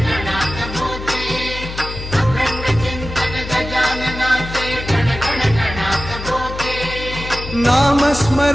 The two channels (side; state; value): left; noise; hum, 9 dB below the sound